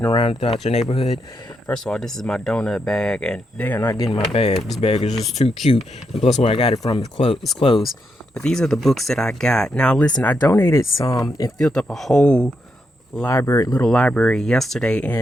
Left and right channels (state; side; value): normal; both; correlation 0.82